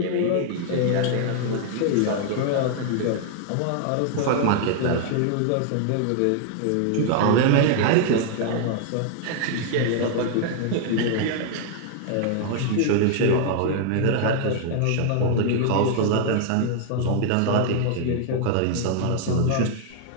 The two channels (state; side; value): different; both; correlation 0.00